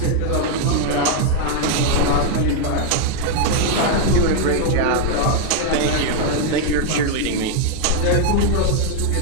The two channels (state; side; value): different; both; correlation 0.01